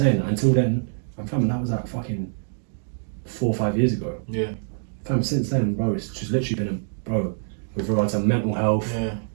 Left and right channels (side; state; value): left; silent; digital silence